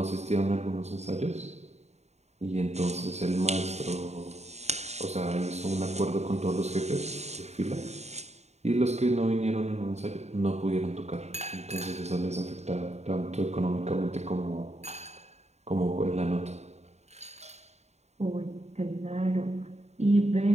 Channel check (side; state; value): left; late; 0.32 ms